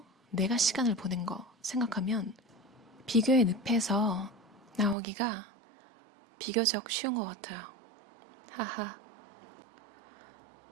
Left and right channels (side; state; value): left; drops out; at 5.0 s